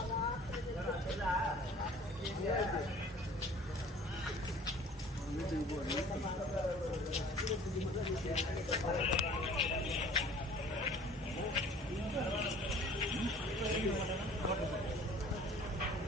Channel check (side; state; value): both; normal; correlation 0.49